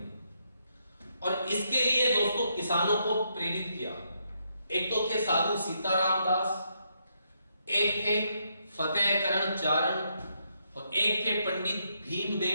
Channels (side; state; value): both; inverted; correlation -0.77